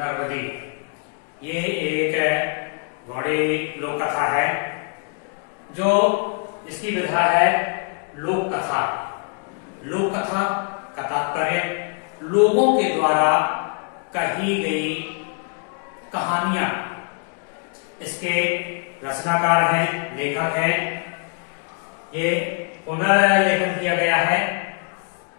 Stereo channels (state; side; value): quieter; right; 40.0 dB